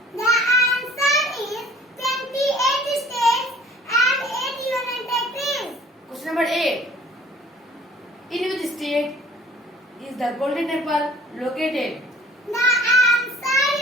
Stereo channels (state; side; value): normal; both; correlation 0.52